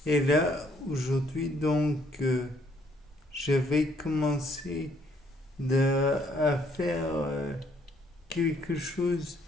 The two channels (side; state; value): both; normal; correlation 0.66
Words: Et là, aujourd'hui, je vais commencer à faire quelque chose